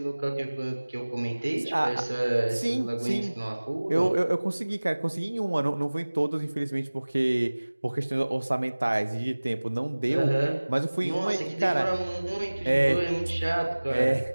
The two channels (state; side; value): inverted; both; correlation -1.00